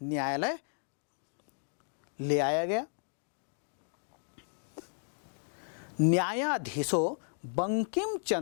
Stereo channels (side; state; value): right; silent; digital silence